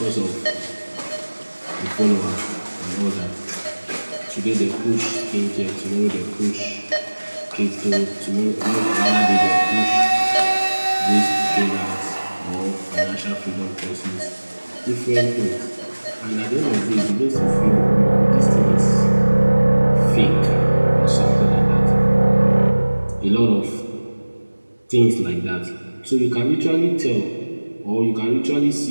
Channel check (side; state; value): both; inverted; correlation -1.00